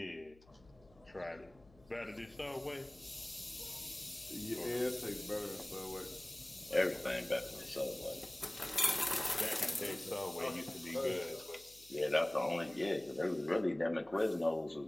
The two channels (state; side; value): noise; left; hum, 27 dB below the sound